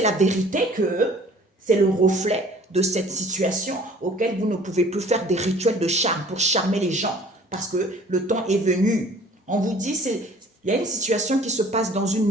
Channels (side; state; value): both; normal; correlation 0.52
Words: la vérité que c'est le reflet de cette situation auquel vous ne pouvez plus faire des rituels de charme pour charmer les gens parce que le temps est venu. On vous dit, il y a une situation qui se passe dans une